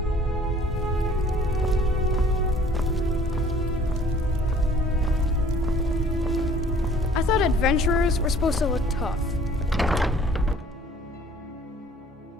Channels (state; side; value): normal; both; correlation 0.54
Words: I thought adventurers were supposed to look tough.